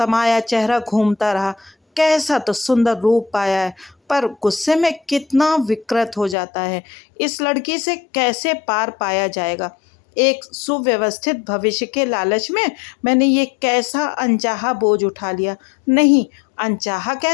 चेहरा घूमता रहा। कैसा तो सुंदर रूप पाया है, पर गुस्से में कितना विकृत हो जाता है। इस लड़की से कैसे पार पाया जाएगा? एक सुव्यवस्थित भविष्य के लालच में मैंने ये कैसा अनचाहा बोझ उठा लिया। नहीं, अनचाहा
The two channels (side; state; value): right; drops out; at 6.4 s